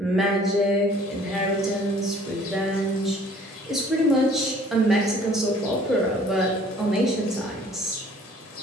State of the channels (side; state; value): both; normal; correlation 0.54